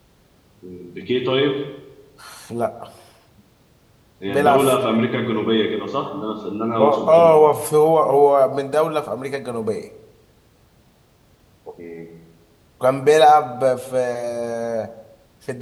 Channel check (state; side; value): identical; both; correlation 1.00